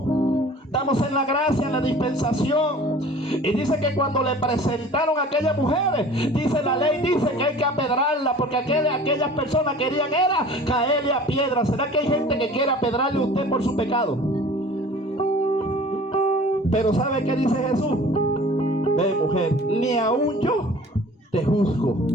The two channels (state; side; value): normal; both; correlation 0.45